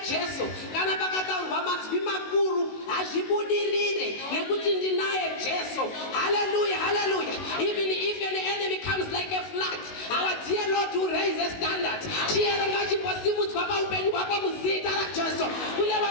Jesu, kana pakataurwa mazwi makuru hazvibudirire nekuti ndinaye Jesu. Hallelujah, hallelujah. Even if an enemy comes like a flood, our dear Lord will raise a standard. Chiyero ngachimbosimudzwa paupenyu hwako muzita raJesu. Kune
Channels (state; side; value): late; right; 19 ms